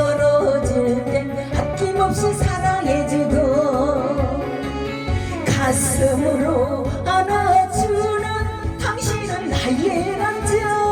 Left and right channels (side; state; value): both; identical; correlation 1.00